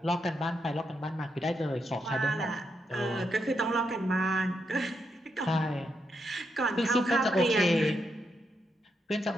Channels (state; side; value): normal; both; correlation 0.82